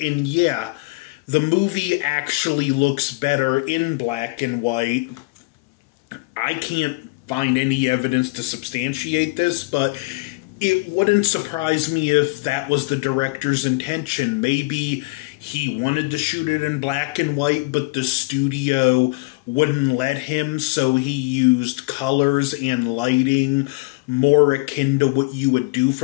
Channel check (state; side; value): quieter; right; 25.7 dB